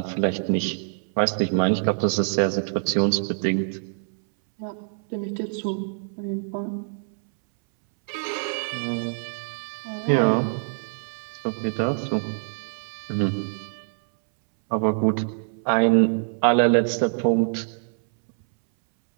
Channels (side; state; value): left; silent; 62 dB below the other